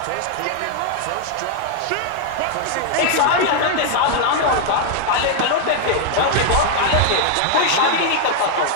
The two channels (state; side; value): different; both; correlation 0.00